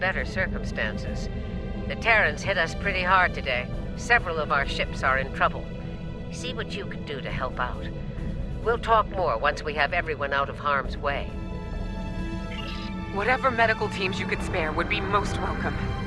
circumstances. The Terrans hit us pretty hard today. Several of our ships are in trouble. See what you can do to help out. We'll talk more once we have everyone out of harm's way. Whatever medical teams you could spare would be most welcome.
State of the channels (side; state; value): both; identical; correlation 1.00